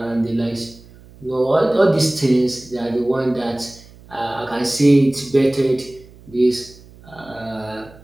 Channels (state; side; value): noise; right; hum, 23 dB below the sound